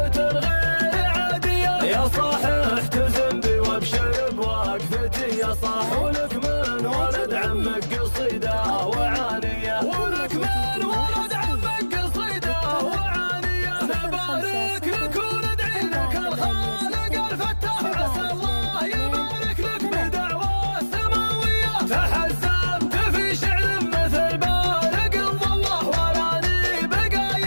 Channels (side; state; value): both; inverted; correlation -1.00